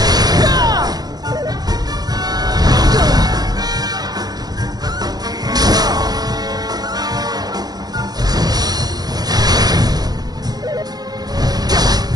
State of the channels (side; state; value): left; late; 0.19 ms